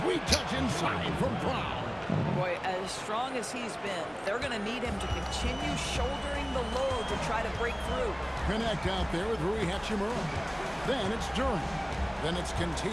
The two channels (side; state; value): both; identical; correlation 1.00